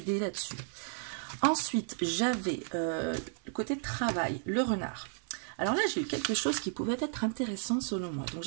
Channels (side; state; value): left; silent; 56 dB below the other